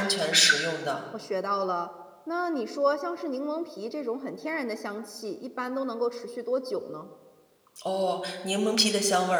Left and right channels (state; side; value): identical; both; correlation 1.00